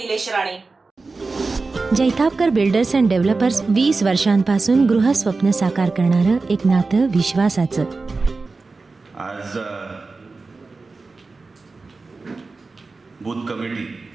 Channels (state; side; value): quieter; left; 3.9 dB